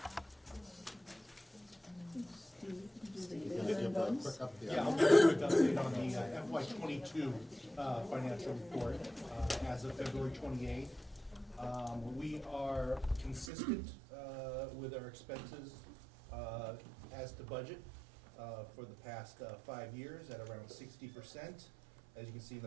Quick up, Yeah, I'll give you a quick update on the FY '22 financial report as of February 28th. We are consistent with our expenses as to budget for the past 5 years at around 60%. As you can see in the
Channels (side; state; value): left; drops out; at 13.5 s